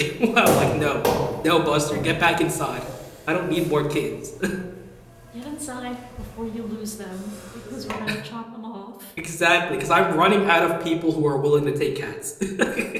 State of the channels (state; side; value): identical; both; correlation 1.00